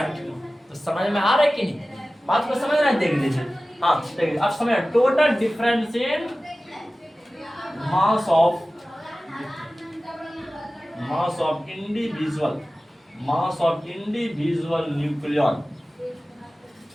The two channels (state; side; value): normal; both; correlation 0.96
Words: तो समझ में आ रहा है कि नहीं, बात को समझ रहे हैं, देख लीजिए। हाँ, देखिए अब समझ, total difference in mass of individual, mass of individual nucleon.